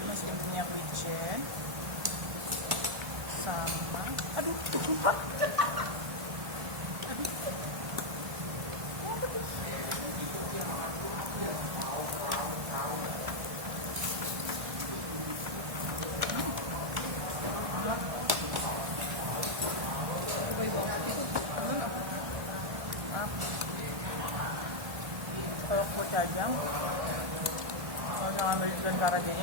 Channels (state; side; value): late; left; 1.4 ms